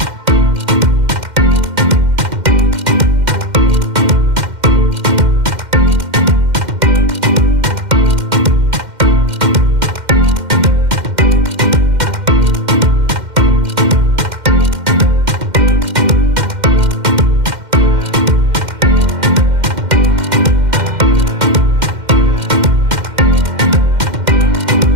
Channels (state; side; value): late; left; 2.1 ms